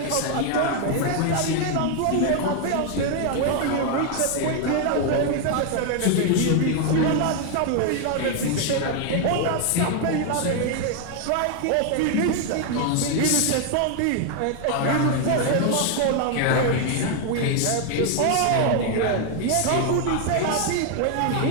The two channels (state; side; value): different; both; correlation 0.00